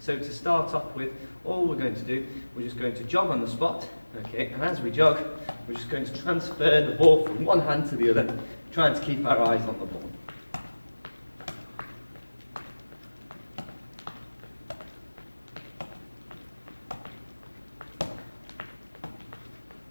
So to start off with, all we're going to do, we're just going to jog on the spot, okay? And as we jog, we're just going to transfer the ball from one hand to the other, trying to keep our eyes on the ball.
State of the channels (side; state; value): both; inverted; correlation -1.00